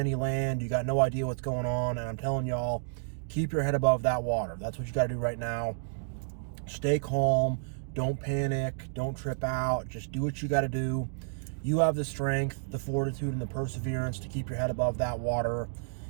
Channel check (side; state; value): left; silent; digital silence